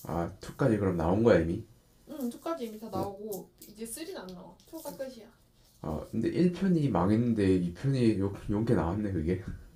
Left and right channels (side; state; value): both; identical; correlation 1.00